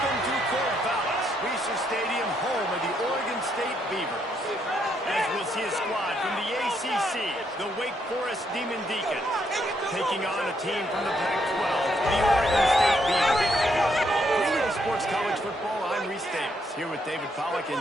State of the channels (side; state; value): both; normal; correlation 0.75